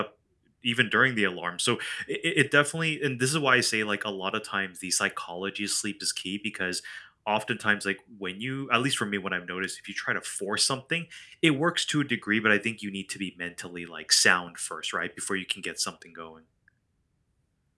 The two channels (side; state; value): both; identical; correlation 1.00